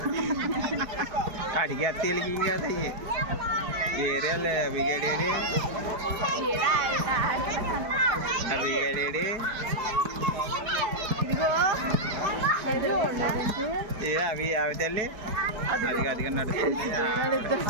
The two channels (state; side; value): late; left; 4.7 ms